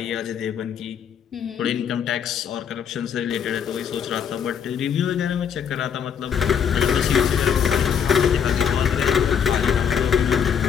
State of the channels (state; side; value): quieter; right; 7.7 dB